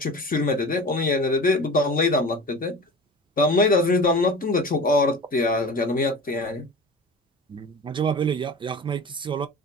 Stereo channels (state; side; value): normal; both; correlation 0.35